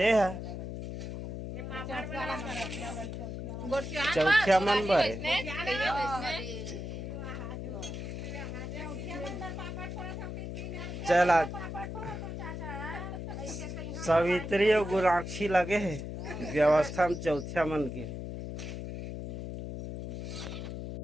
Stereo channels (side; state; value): left; noise; hum, 6 dB below the sound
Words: है चौथिया मन बर चला सावित्री और गुराक्षी लगे है व्यवस्था में चौथिया मन के।